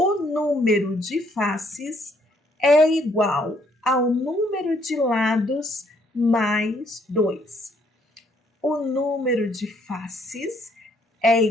número de faces é igual ao número de lados mais 2. O número de faces é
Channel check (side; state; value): both; normal; correlation 0.68